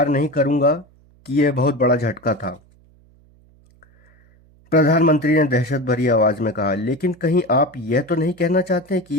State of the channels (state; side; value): noise; right; hum, 30 dB below the sound